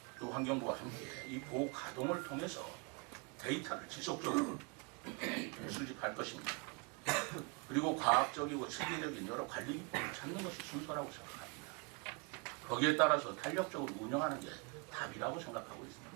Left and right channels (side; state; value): left; quieter; 32.6 dB